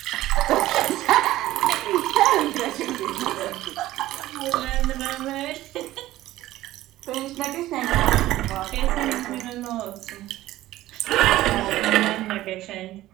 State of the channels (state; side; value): quieter; left; 15.5 dB